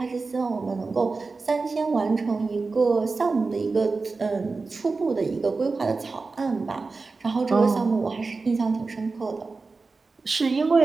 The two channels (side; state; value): left; quieter; 4.0 dB